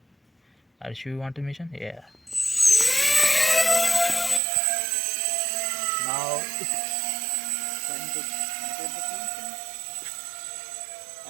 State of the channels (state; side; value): drops out; left; at 4.4 s